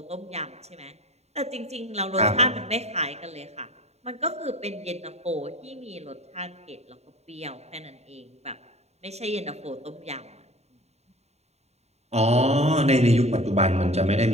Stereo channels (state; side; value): late; left; 0.31 ms